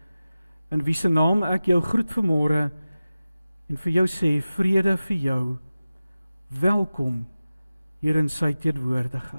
in wie se naam ek jou groet vanmôre en vir jou sê, vrede vir jou, welkom hier in sy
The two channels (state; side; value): inverted; both; correlation -0.95